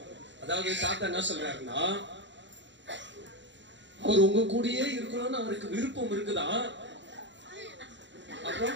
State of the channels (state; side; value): late; left; 0.53 ms